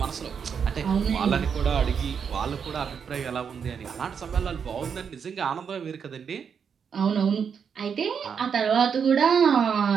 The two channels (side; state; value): left; quieter; 6.9 dB